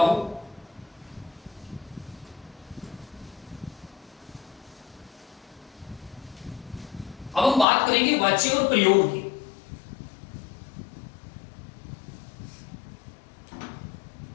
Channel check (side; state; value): right; drops out; at 7.7 s